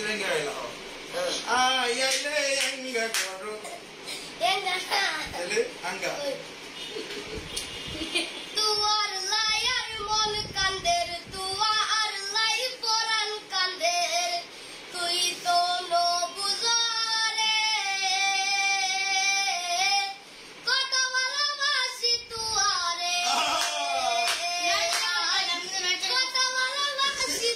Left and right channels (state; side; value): identical; both; correlation 1.00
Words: আইলা হো আইলে আঙ্গা করো এ না তাহলে আঙ্গা তুয়ার লায়ার মন কান্দের, তুয়ার লাই পরান কান্দের, তুই তো নো বুঝারে কত ভালোবাসি তুয়ারে, কত ভালোবাসি